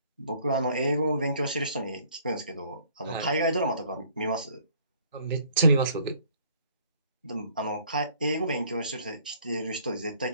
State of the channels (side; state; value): both; inverted; correlation -0.59